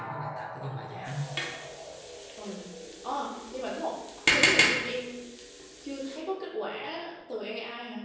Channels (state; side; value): identical; both; correlation 1.00